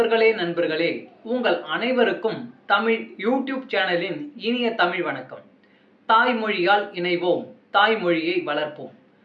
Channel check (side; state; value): both; identical; correlation 1.00